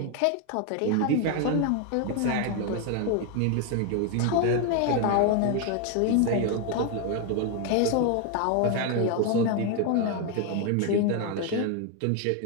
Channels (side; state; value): both; different; correlation 0.01